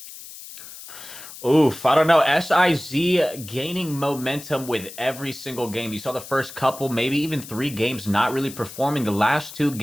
Oof, I don't know. SIZ gaining momentum with every single game. You saw the first couple, maybe even 3 games not really performing. The last 2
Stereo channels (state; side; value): noise; left; hiss, 14 dB below the sound